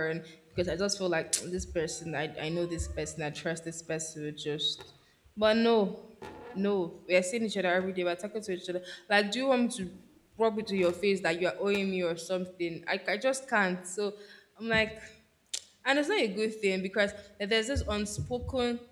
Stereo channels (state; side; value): identical; both; correlation 1.00